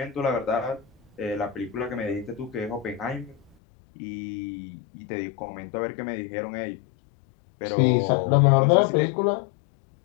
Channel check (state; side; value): drops out; right; at 3.5 s